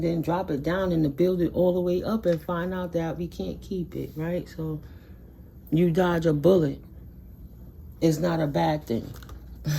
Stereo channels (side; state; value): both; identical; correlation 1.00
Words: then drop it down and to build it all the way up and find out that we can't keep it, right? So you dodge a bullet. is not a bad thing.